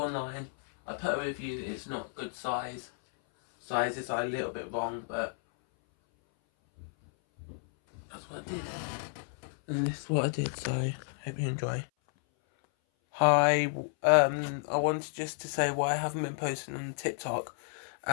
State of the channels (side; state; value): right; silent; 56 dB below the other